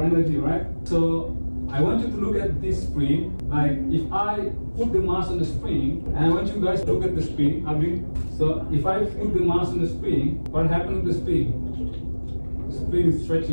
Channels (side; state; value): both; inverted; correlation -1.00